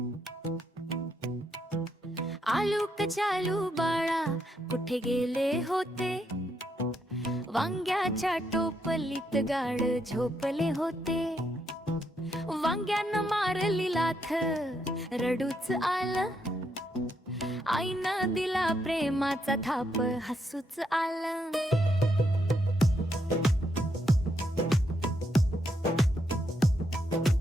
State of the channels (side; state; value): both; normal; correlation 0.78